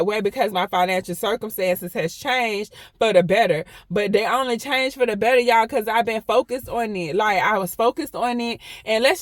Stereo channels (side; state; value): both; identical; correlation 1.00